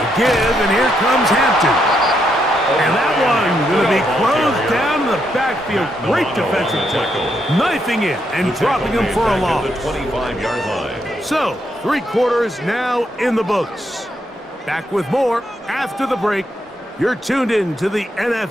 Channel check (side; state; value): both; normal; correlation 0.78